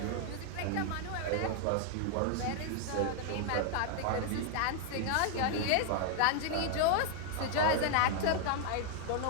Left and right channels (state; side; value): different; both; correlation 0.00